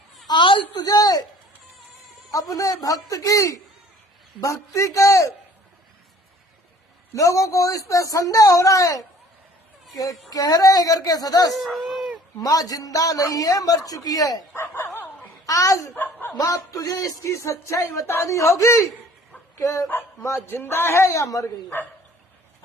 आज तुझे अपने भक्त की भक्ति के लोगों को इस पे संदेह हो रहा है कि कह रहे हैं घर के सदस्य माँ जिंदा नहीं है, मर चुकी है। आज माँ तुझे इसकी सच्चाई बतानी होगी कि माँ जिंदा है या मर गई है।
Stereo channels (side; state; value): both; normal; correlation 0.52